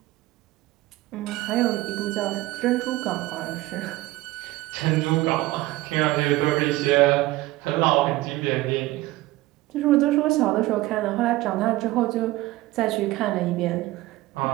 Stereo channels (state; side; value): quieter; left; 18.3 dB